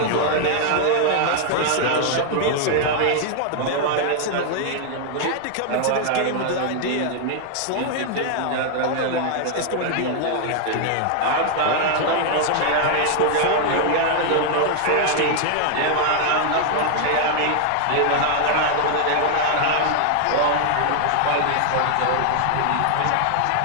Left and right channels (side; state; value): both; different; correlation 0.00